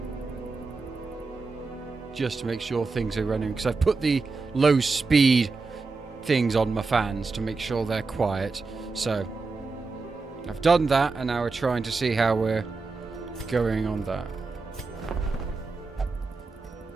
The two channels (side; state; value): left; quieter; 4.1 dB